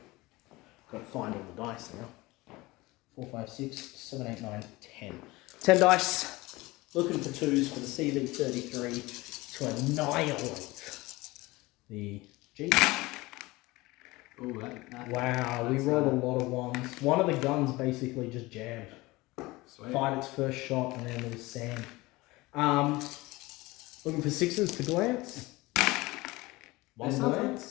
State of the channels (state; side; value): quieter; right; 21.1 dB